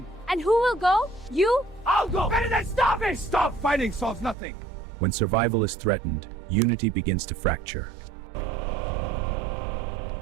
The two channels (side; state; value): left; drops out; at 4.4 s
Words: And who will go? You? I'll go! Better than starving! Stop fighting solves nothing! When survival is threatened, unity begins to fracture.